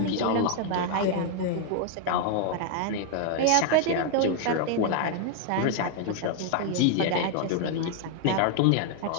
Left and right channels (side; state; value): both; different; correlation 0.00